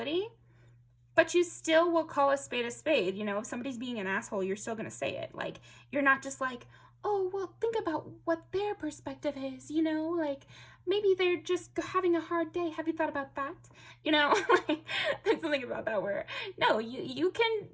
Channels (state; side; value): identical; both; correlation 1.00